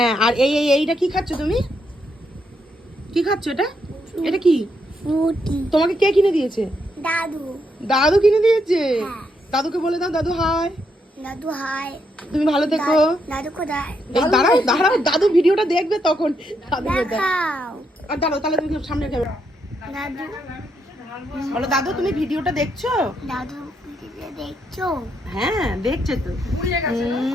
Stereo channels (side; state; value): both; normal; correlation 0.78